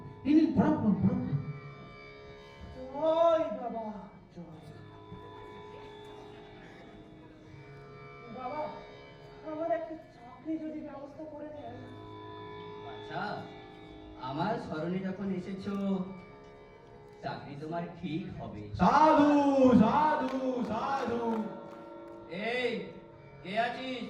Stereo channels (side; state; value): both; identical; correlation 1.00